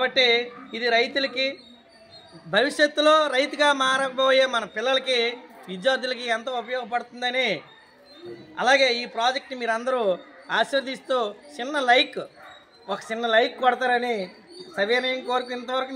ఇది రైతులకి, భవిష్యత్తులో రైతుగా మారబోయే మన పిల్లలకి, విద్యార్థులకి ఎంతో ఉపయోగపడుతుందని, అలాగే ఈ ప్రాజెక్ట్ని మీరు అందరూ ఆశీర్వదిస్తూ ఒక చిన్న లైక్ కొడతారని సవినయం కోరిక. ఇంతవరకు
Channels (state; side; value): identical; both; correlation 1.00